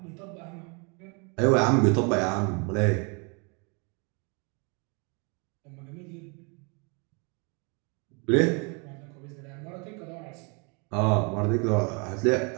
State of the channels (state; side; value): quieter; left; 33.1 dB